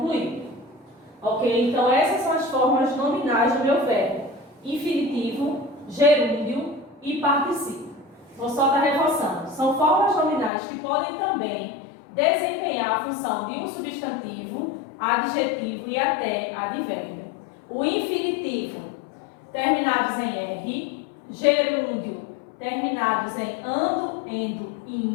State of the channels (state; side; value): drops out; right; at 10.5 s